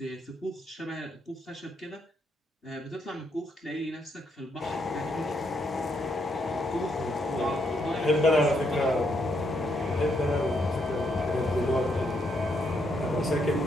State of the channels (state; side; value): normal; both; correlation 0.76